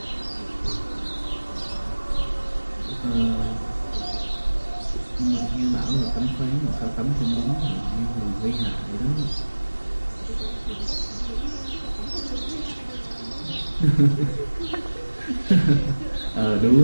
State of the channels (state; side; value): inverted; both; correlation -1.00